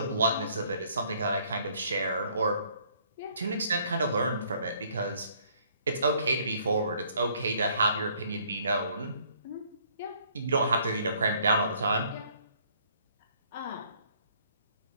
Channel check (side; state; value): both; inverted; correlation -0.63